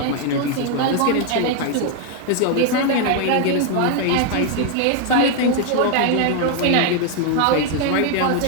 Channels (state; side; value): different; both; correlation 0.00